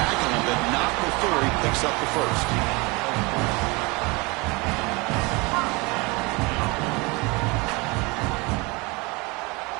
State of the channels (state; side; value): quieter; left; 26.1 dB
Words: him, but not before he picks up the first.